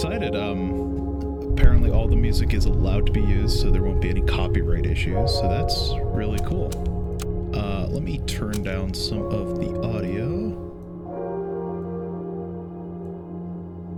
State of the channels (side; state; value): both; identical; correlation 1.00